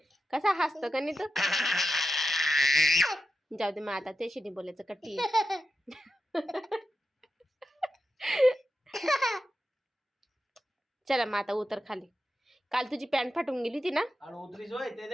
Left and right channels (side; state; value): both; normal; correlation 0.89